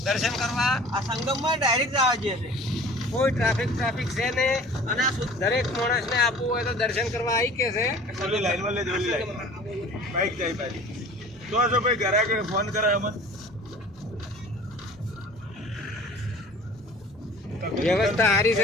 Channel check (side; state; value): both; normal; correlation 0.45